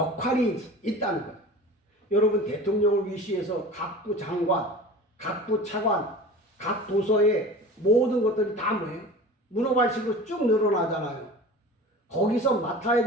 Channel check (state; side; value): normal; both; correlation 0.38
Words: 있다는 거예요. 여러분 대통령을 위시해서 각부 장관, 각부 차관, 각 부서의 모든 것들이 다 뭐예요? 문어발식으로 쭉 늘어나잖아요. 거기서 맡아야